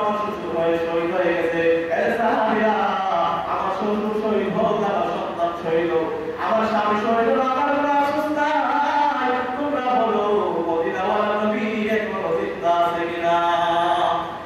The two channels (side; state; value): both; identical; correlation 1.00